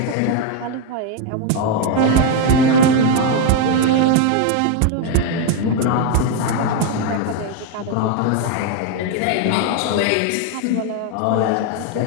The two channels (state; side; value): different; both; correlation 0.01